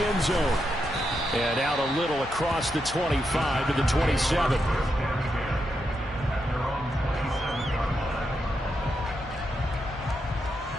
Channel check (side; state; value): both; normal; correlation 0.83